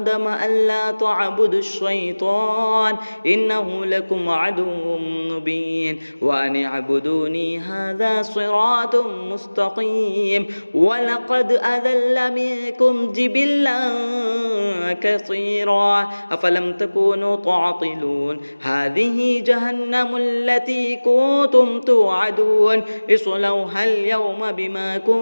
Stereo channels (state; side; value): inverted; both; correlation -1.00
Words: ألا تعبدوا الشيطان إنه لكم عدو مبين وأن اعبدوني هذا صراط مستقيم ولقد أذل منكم جبلا كثيرا أفلم تكونوا تعقلون هذه جهنم التي كنتم توعدون اصلوها اليوم بما